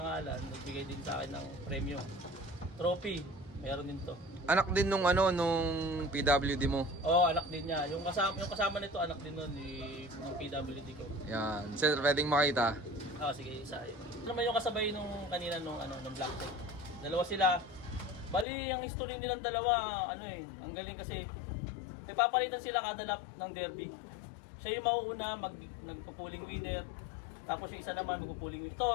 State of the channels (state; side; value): drops out; right; at 18.4 s